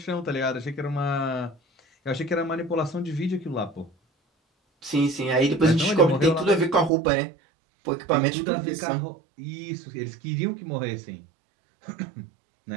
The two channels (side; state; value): left; drops out; at 6.9 s